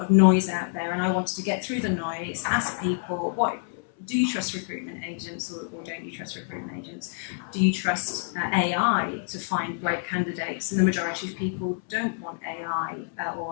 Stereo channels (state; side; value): silent; right; 60 dB below the other